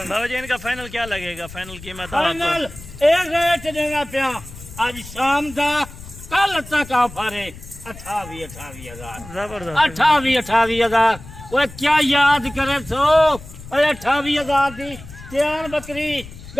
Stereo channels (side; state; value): left; noise; rumble, 16 dB below the sound